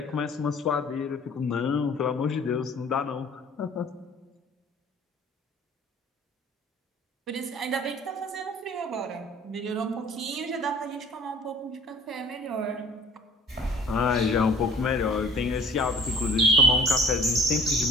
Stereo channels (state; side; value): normal; both; correlation 0.49